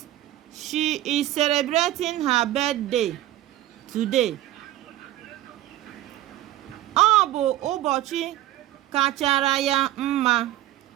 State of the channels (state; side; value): quieter; left; 14.5 dB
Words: she is celebrating her birthday today. Ọ bụ ụbọchị kachara ya mma.